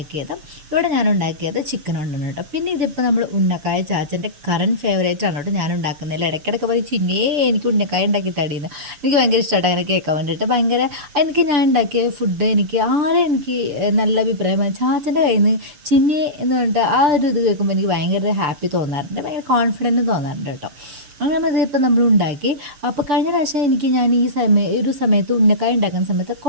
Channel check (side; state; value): left; late; 6.9 ms